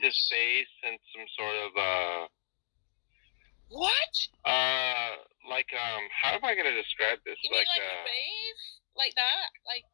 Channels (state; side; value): silent; right; digital silence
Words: his face in some sort of What? Like how am I gonna describe this? You mean like a rave? Like that? Like?